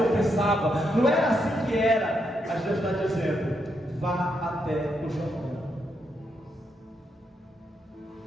pensava, não era assim que era. Mas Deus está dizendo: vá até o Jordão.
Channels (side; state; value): both; normal; correlation 0.80